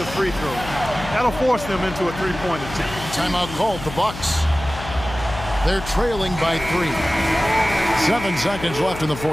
free throw. That'll force them into a 3-point attempt. Timeout called, the Bucks. They're trailing by 3. 7 seconds left in the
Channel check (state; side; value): noise; left; hum, 11 dB below the sound